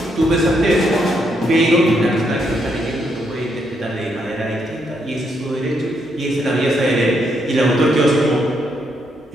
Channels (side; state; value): both; normal; correlation 0.77